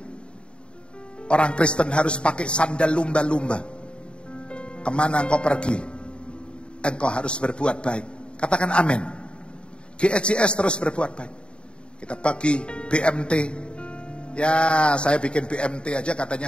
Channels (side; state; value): right; late; 0.054 ms